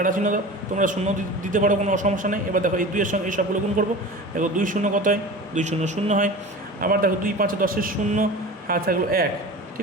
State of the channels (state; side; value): normal; both; correlation 0.35